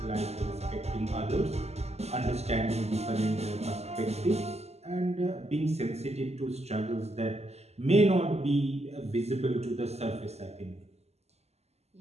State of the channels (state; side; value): late; left; 0.31 ms